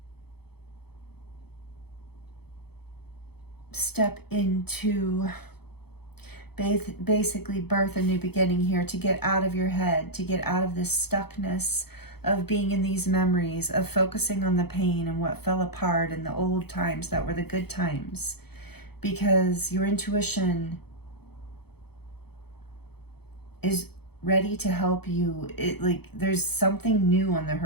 step into basically birth a new beginning here, to get out of your head, to get out of this stuckness of being in these memories, of focusing on the pain and what fell apart and the old times that were the good times. Because your intuition is ready to help you. There's something new on the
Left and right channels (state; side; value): late; right; 0.97 ms